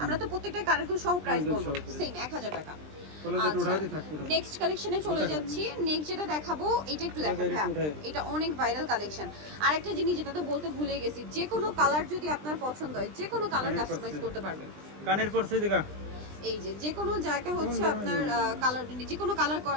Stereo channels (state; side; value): late; left; 20 ms